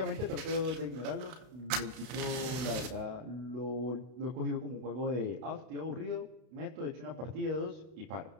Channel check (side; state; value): left; late; 32 ms